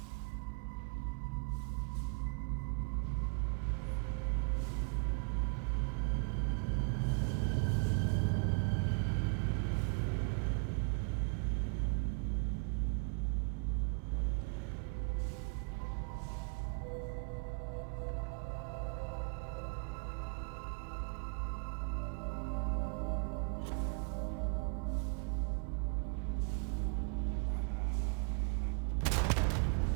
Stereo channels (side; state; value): left; quieter; 37.8 dB